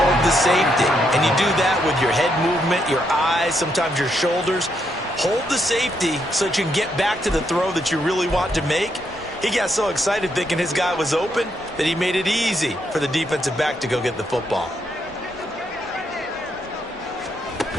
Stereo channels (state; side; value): normal; both; correlation 0.77